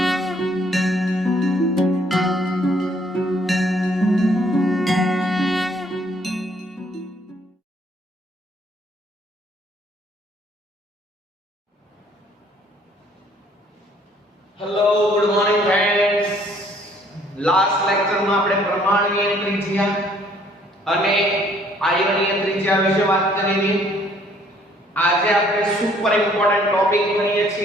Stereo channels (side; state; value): both; normal; correlation 0.62